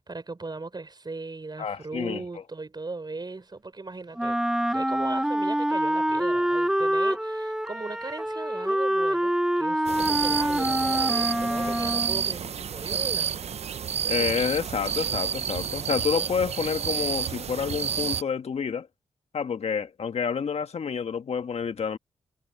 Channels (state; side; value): normal; both; correlation 0.54